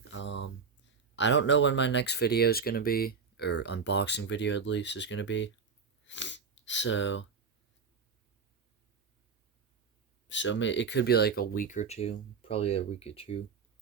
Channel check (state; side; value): quieter; left; 5.6 dB